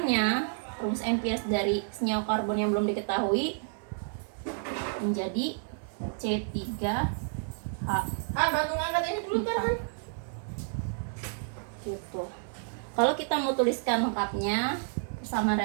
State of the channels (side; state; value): left; silent; digital silence